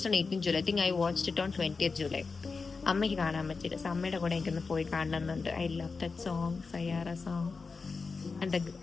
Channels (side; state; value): right; quieter; 4.5 dB